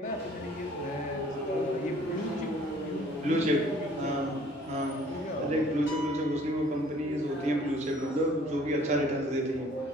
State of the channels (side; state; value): both; normal; correlation 0.55